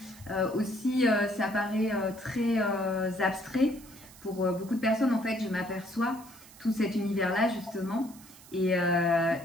Aussi, ça paraît très abstrait. Pour beaucoup de personnes, en fait, je m'aperçois tout cet univers-là, justement. Et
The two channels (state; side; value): noise; right; hiss, 21 dB below the sound